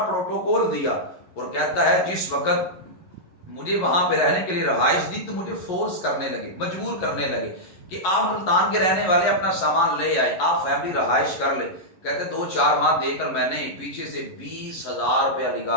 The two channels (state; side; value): late; right; 11 ms